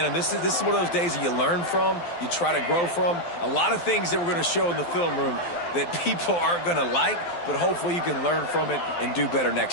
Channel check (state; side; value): late; right; 12 ms